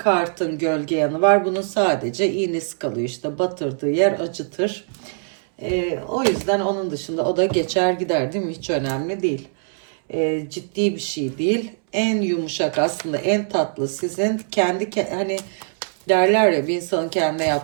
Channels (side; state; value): left; silent; 64 dB below the other